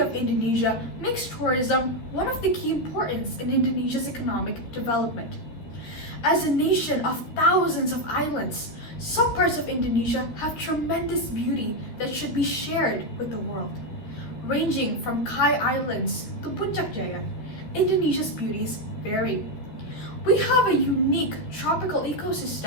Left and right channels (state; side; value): late; right; 13 ms